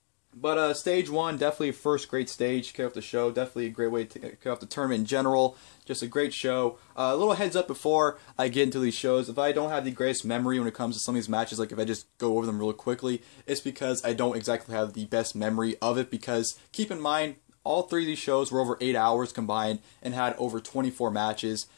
But stage 1, definitely a first great stage to kick off the show. Definitely a great way to kick off the tournament in general. Just a great show. A little heads up before I get into these shows. If I don't have the greatest memory when it comes to some of these matches, like if I just go over them really quickly, it's because I don't exactly have the best memory of it. Because keep in mind, all 3 of these shows were over 8 hours combined and had over 24 matches,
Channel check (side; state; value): right; silent; digital silence